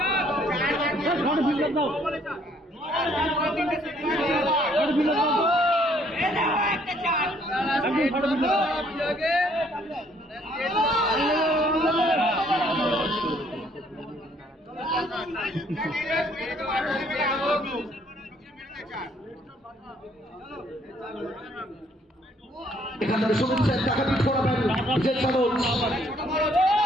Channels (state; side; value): normal; both; correlation 0.64